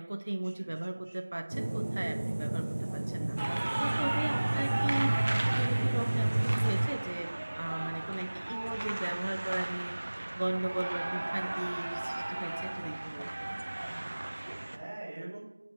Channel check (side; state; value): both; inverted; correlation -1.00